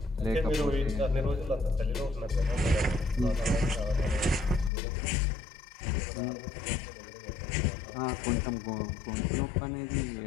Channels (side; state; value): right; drops out; at 4.7 s